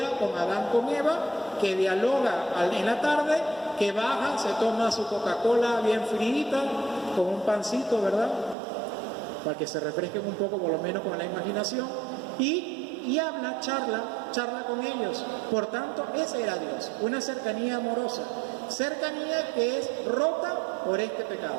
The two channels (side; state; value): left; drops out; at 8.6 s